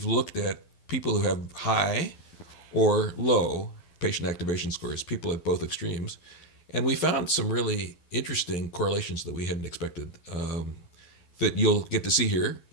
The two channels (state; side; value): late; right; 12 ms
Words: looked at people who have high or low patient activation scores, people at both extremes, and we found some really interesting correlations that we hadn't expected that you'll get to see here.